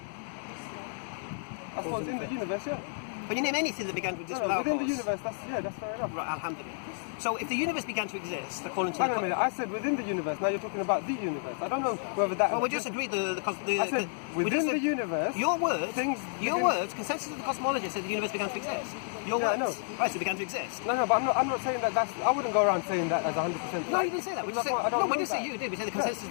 I suppose in the universe, yeah. Can you name anything that began to exist without a within cause? the universe, that's fair enough. Right, alhamdulillah. So if the universe began to exist, according to... Hang on a minute, I said within the universe, now you're talking about the universe. I don't know whether that... Well, we just agreed I said within the universe... Your words, begin- words, consensus of the cosmologists said the universe began to exist. Your Yeah, I words. know. Right, so it began to exist. No, but I'm not saying that that's... I wouldn't go around saying that as 100%. No, you didn't say that. We just said, I don't no, we know didn't say that. you did. We said the consensus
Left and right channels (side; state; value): right; silent; digital silence